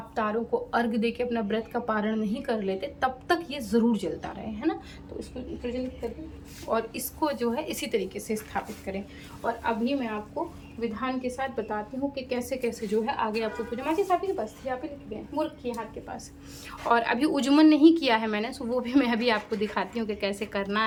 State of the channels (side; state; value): both; identical; correlation 1.00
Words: तारों को अर्घ दे के अपना व्रत का पारण नहीं कर लेते, तब तक ये ज़रूर जलता रहे, है ना। तो इसको प्रज्वलित करें और इसको जो है इसी तरीके से स्थापित करें। और अभी मैं आपको विधान के साथ बताती हूँ कि कैसे कैसे जो है आगे आपको पूजा। माँ जी आपके पास थी, यहाँ पे लिख गए मूर्ख की हाथ के पास। और अभी उज्जमन नहीं किया है मैंने, सो वो भी मैं अभी आपको दिखाती हूँ कि कैसे करना